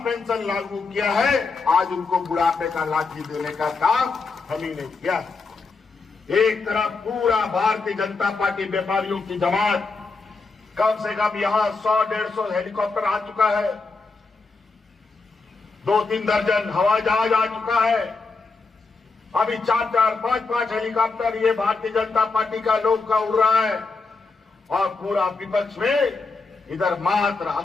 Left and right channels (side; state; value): right; quieter; 4.1 dB